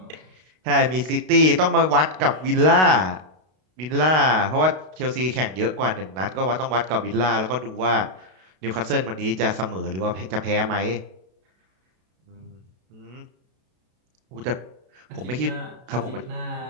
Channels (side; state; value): left; late; 32 ms